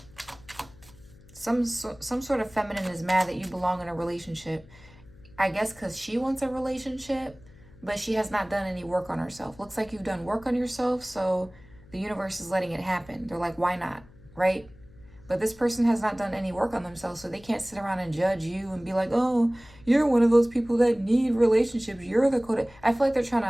Some sort of feminine is mad that you belong in a relationship. I guess because she wants a relationship, but she has not done any work on herself. Looks like you've done work on yourself, so the universe is letting it happen. They're like, why not, right? But this person has not done any work on themselves, so they can't sit around and judge you and be like, oh, you're one of those people that need relationships. You're the codependent. I feel like they're trying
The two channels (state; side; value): noise; left; hum, 23 dB below the sound